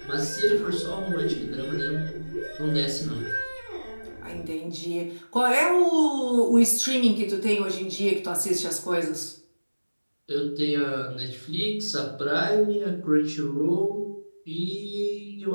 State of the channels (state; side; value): inverted; both; correlation -1.00